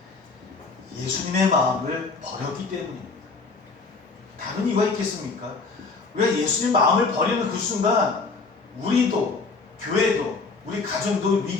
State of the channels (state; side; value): quieter; right; 4.2 dB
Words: 예수님의 마음을 버렸기 때문입니다. 다른 이유가 있겠습니까? 왜 예수님 마음을 버리는 그 순간 우리도, 교회도, 우리 가정도